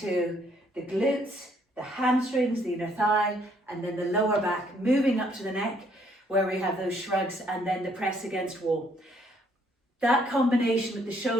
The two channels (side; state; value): both; normal; correlation 0.67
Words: the glutes, the hamstrings, the inner thigh, and then the lower back, moving up to the neck, where we have those shrugs, and then the press against wall. That combination with the